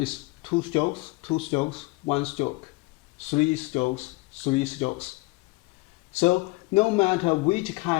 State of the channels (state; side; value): quieter; right; 23.5 dB